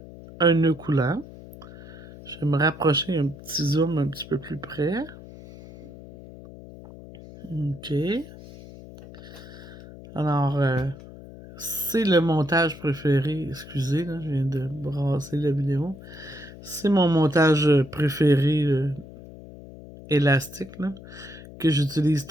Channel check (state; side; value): noise; left; hum, 17 dB below the sound